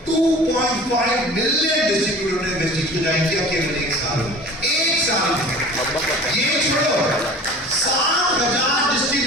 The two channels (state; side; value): normal; both; correlation 0.41